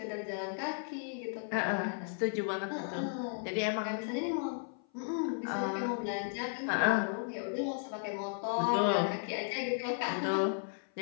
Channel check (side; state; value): right; silent; 55 dB below the other